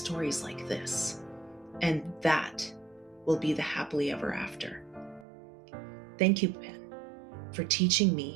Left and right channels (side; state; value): left; drops out; at 5.2 s